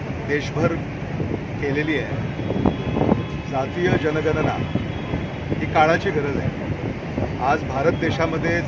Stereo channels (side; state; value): both; identical; correlation 1.00